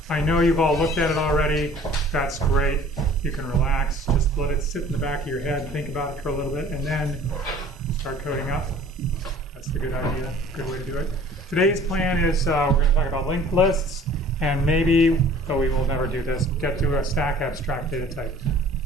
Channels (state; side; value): normal; both; correlation 0.49